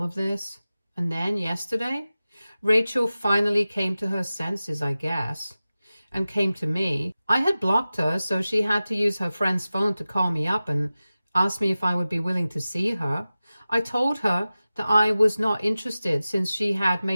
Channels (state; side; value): inverted; both; correlation -0.96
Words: of this. And then yesterday, Rachel finally came to her senses, I guess, and came to me. I had blocked her, so she had to use her friend's phone to call me up and ask me if I would be willing to see her. I told her that I was not interested since she had